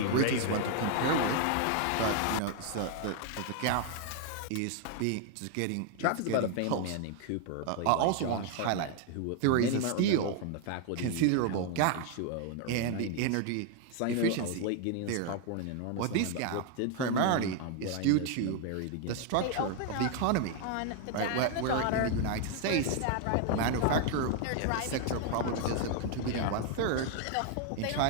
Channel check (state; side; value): different; both; correlation 0.00